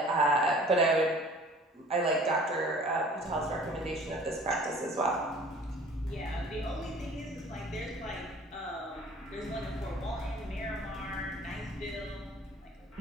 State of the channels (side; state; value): both; normal; correlation 0.49